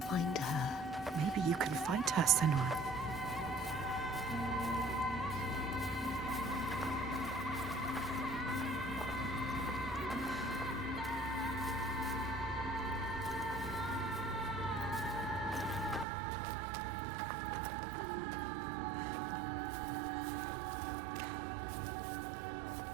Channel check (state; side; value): drops out; left; at 16.1 s